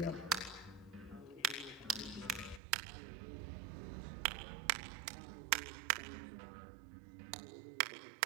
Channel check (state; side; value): drops out; left; at 2.6 s